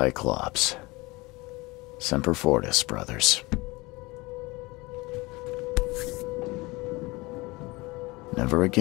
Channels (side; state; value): right; quieter; 23.0 dB